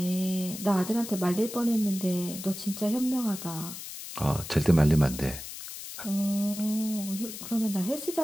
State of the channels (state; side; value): noise; left; hiss, 10 dB below the sound